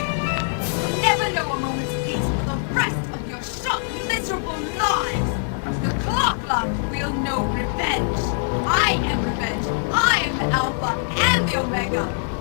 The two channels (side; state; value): right; silent; digital silence